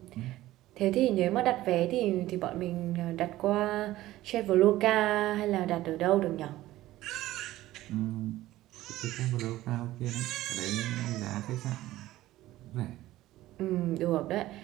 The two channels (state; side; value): quieter; left; 15.8 dB